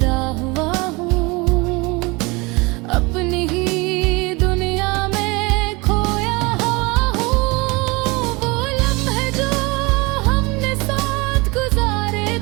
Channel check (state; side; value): quieter; left; 25.5 dB